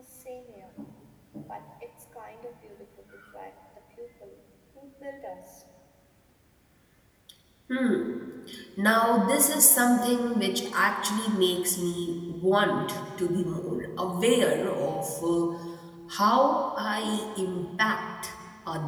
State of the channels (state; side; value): identical; both; correlation 1.00